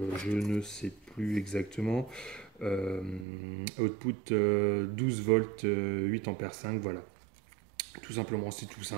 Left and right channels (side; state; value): left; drops out; at 3.2 s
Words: je ne sais plus exactement, output 12 volts 8 ampères 5, voilà. Tout simplement, c'est tout